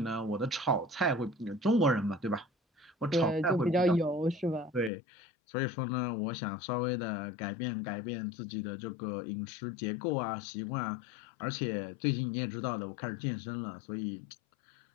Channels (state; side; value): drops out; right; at 4.9 s